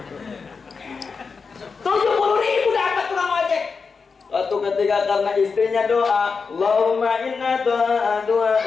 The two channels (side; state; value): right; quieter; 5.1 dB